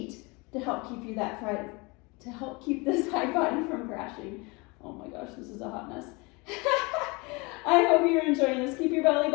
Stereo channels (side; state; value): right; quieter; 27.2 dB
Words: to help keep you to help keep the side body from crashing. Oh my gosh, this is a hot mess. I hope you're enjoying this. Keep your belly